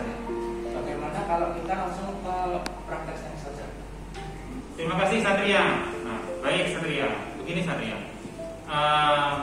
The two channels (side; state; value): both; identical; correlation 1.00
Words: Bagaimana kalau kita langsung ke prakteknya saja? Terima kasih Satria. Nah, baik Satria. Begini Satria.